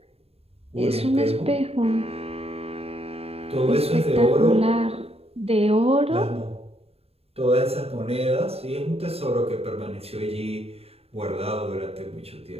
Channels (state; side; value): late; left; 0.29 ms